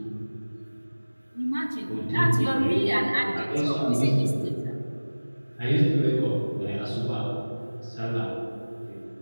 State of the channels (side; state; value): both; inverted; correlation -1.00